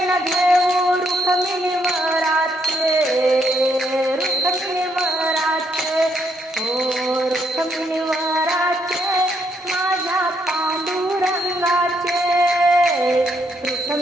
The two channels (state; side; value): normal; both; correlation 0.74